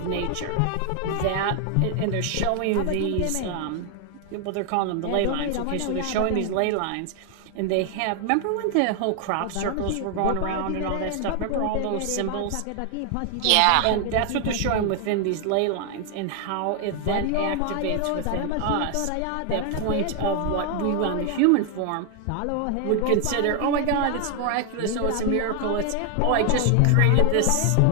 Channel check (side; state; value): both; different; correlation 0.00